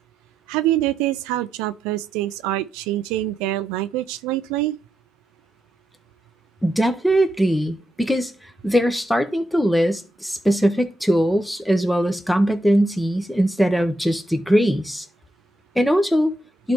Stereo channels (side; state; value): both; normal; correlation 0.83